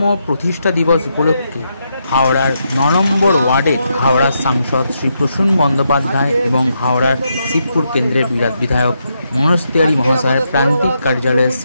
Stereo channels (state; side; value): inverted; both; correlation -0.81